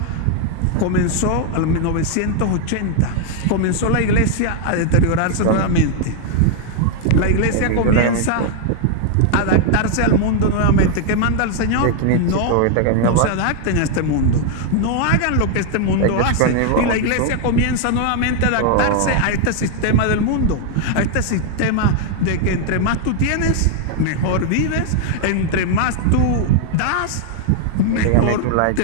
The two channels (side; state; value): both; different; correlation 0.00